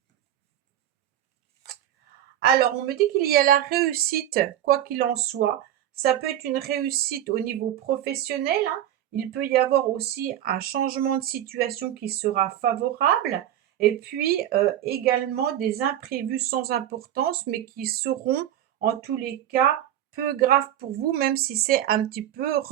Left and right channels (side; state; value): left; quieter; 11.7 dB